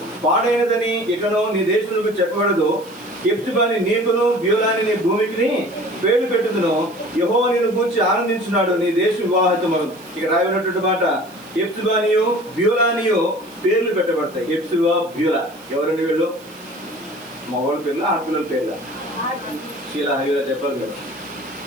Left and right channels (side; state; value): right; noise; hiss, 24 dB below the sound